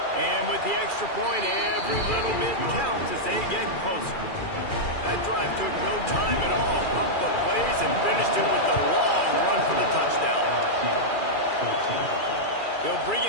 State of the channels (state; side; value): late; right; 2.4 ms